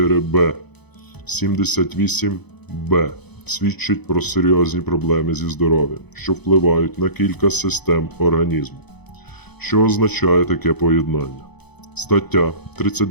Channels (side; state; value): right; late; 0.98 ms